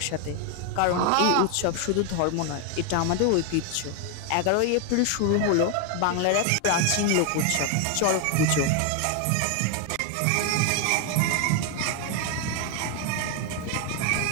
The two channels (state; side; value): different; both; correlation 0.01